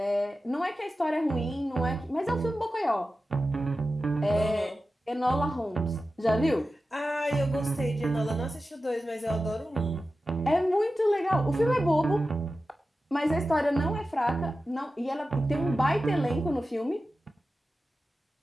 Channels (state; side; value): normal; both; correlation 0.93